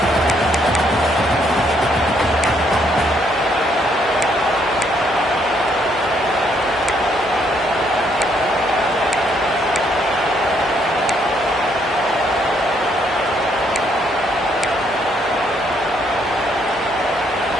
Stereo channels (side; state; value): both; normal; correlation 0.71